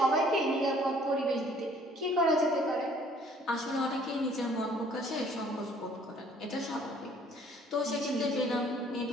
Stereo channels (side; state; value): both; normal; correlation 0.58